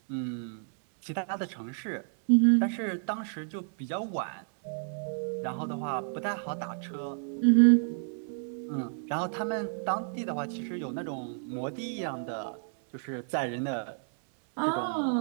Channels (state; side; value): silent; left; 57 dB below the other